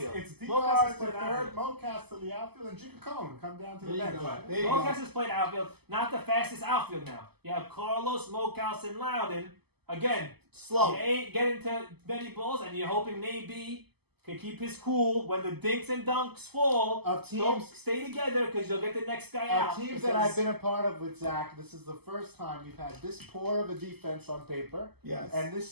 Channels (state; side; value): late; left; 0.97 ms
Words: It's Mo Cass has DR to played third, outfield. Mo Cass to the outfield, and Jigga Cohen come down to the There you bench. go. There you Mo go. Cass has played outfield. Not the fastest outfield now. You have Carlos, Mocaus, and Loudon. Again, Slow. you ain't getting to many balls, and you're hoping Naby can keep his cool when the dinks and dunks fall. Of Don't teams- stay together because you'll get the next guy out. Teams that I've been a part of with Zach, this is the first time we've had this poor of a defense on paper Yes. and